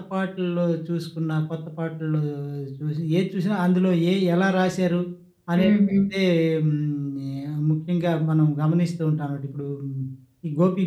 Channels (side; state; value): both; identical; correlation 1.00